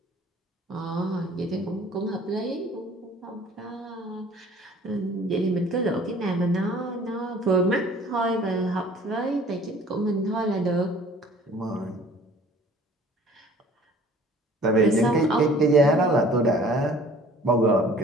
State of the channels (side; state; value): both; normal; correlation 0.51